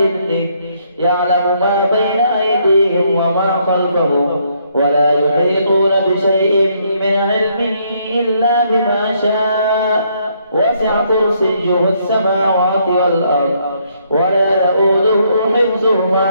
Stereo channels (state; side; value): inverted; both; correlation -0.71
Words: يعلم ما بين أيديهم وما خلفهم ولا يحيطون بشيء من علمه إلا بما شاء وسع كرسيه السماوات والأرض ولا يؤوده حفظهما